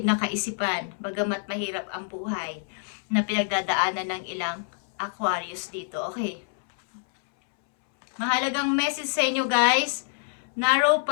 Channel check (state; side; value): silent; right; 60 dB below the other